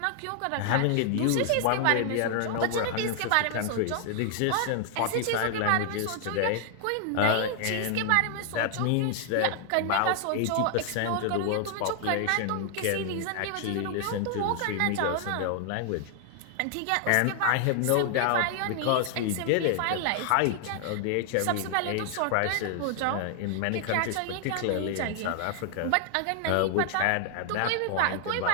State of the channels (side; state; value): both; different; correlation 0.00